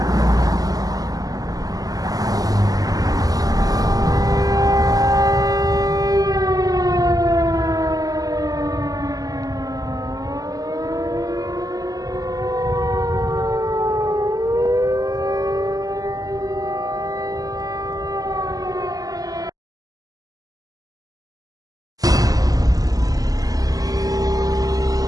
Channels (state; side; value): late; left; 0.17 ms